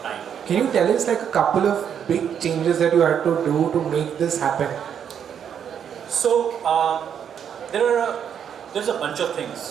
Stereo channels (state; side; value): quieter; left; 8.3 dB